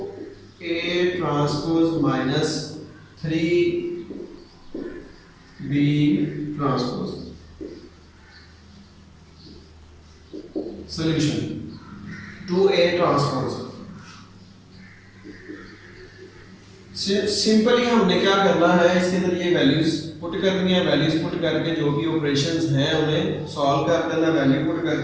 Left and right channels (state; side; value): identical; both; correlation 1.00